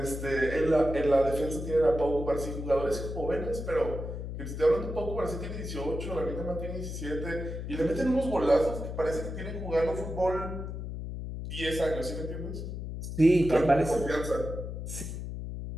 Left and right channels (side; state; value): left; noise; hum, 6 dB below the sound